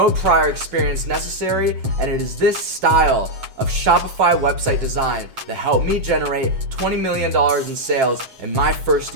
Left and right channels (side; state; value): left; late; 7.6 ms